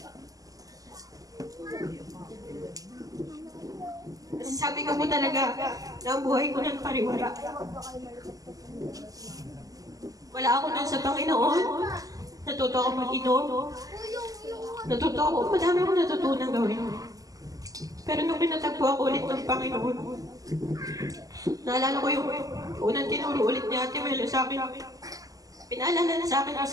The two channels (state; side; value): late; left; 0.17 ms